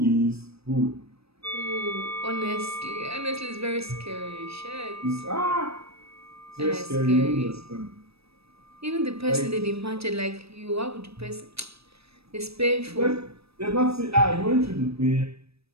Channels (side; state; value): left; late; 0.78 ms